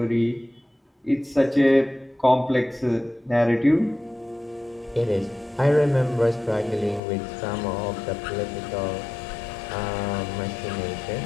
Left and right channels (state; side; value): drops out; right; at 7.0 s